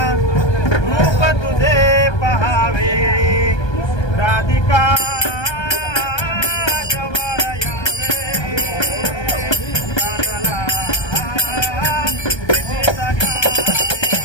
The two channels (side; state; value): right; late; 1.2 ms